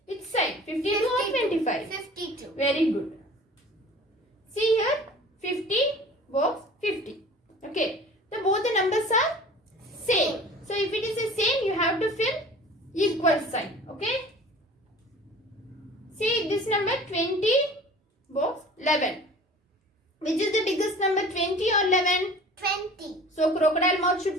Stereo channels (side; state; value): both; normal; correlation 0.44